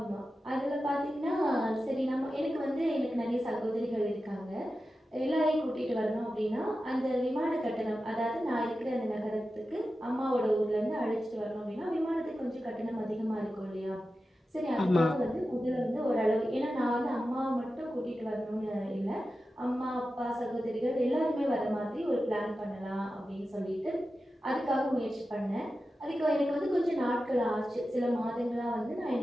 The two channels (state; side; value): normal; both; correlation 0.93